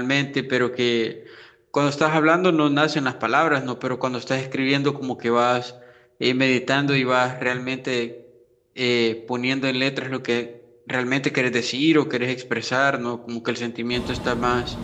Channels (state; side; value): identical; both; correlation 1.00